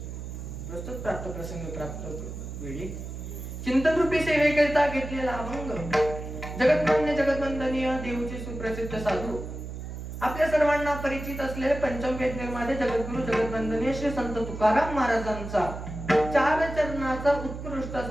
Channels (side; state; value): right; noise; hum, 8 dB below the sound